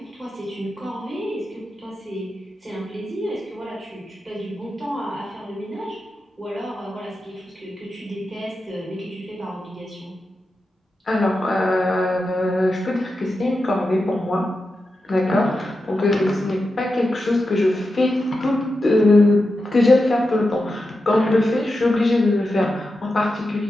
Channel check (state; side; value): normal; both; correlation 0.90